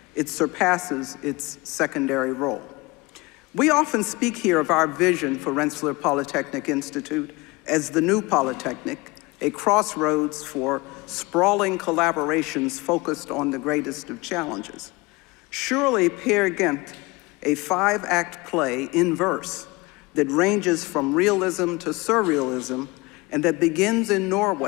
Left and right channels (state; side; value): quieter; right; 23.8 dB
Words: it surpasses its secondary role. We often speak here of our vision for Rensselaer Polytechnic Institute as the new Polytechnic, a crossroads for sprawling collaborations focused on the greatest of challenges. Surely Peer Gynt, a 5-act play in verse that ranges from realism to surrealism and that begins in